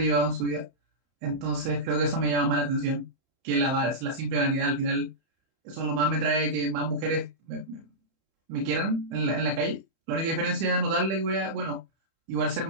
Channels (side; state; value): left; late; 31 ms